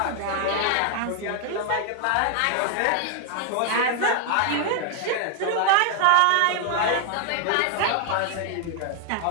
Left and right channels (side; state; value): both; different; correlation 0.00